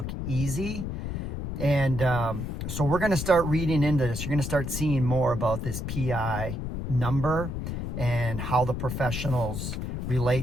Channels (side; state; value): left; noise; rumble, 4 dB below the sound